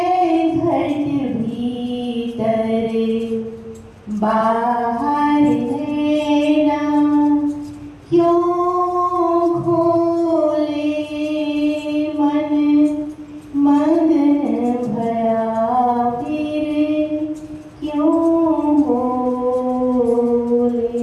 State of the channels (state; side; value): identical; both; correlation 1.00